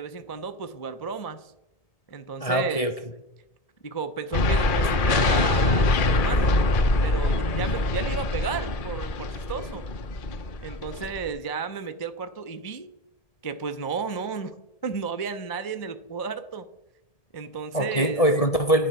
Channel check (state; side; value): late; right; 1.7 ms